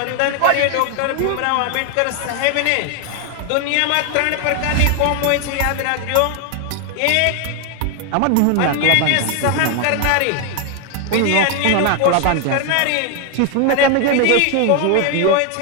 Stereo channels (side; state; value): both; different; correlation 0.01